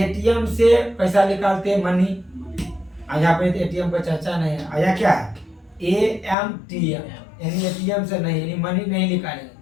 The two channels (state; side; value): drops out; right; at 6.4 s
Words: से पैसा निकालते हैं मनी, यहाँ पे ATM पर चर्चा नहीं है। आया क्या है? AMTF यानी ATM से नहीं, यानी मनी नहीं निकालेंगे।